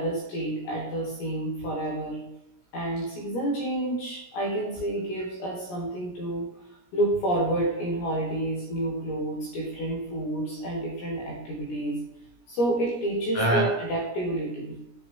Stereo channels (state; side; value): late; right; 17 ms